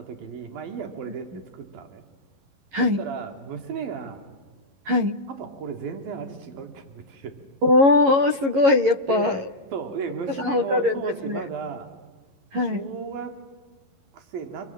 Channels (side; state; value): left; late; 11 ms